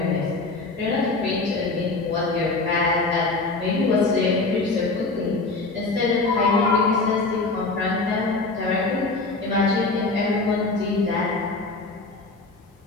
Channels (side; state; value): right; quieter; 3.5 dB